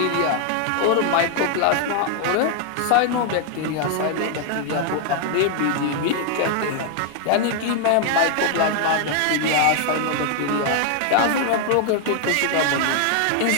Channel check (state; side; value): different; both; correlation 0.00